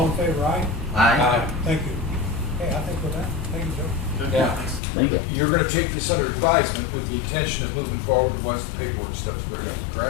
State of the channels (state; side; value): drops out; right; at 4.8 s